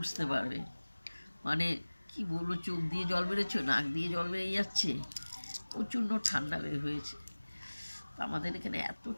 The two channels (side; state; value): both; inverted; correlation -1.00